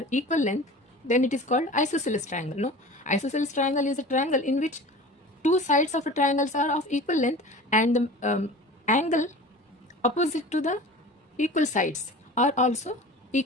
equal length, then it is called isosceles triangle. No, isosceles triangle is a triangle in which two sides of a triangle are of equal length, and the angle opposite to the equal sides are also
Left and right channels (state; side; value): normal; both; correlation 0.38